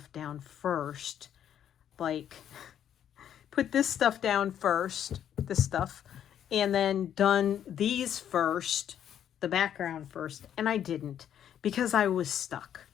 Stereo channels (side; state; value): right; quieter; 9.9 dB